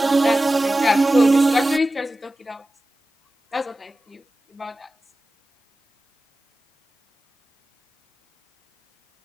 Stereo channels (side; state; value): both; normal; correlation 0.95